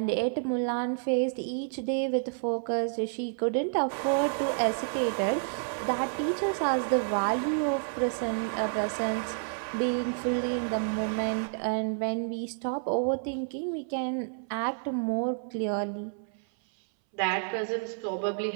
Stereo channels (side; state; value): left; silent; 58 dB below the other